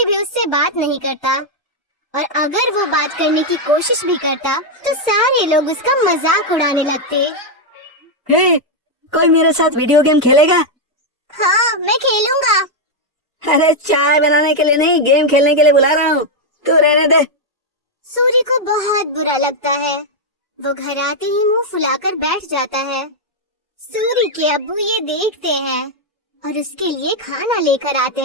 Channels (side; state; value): both; normal; correlation 0.00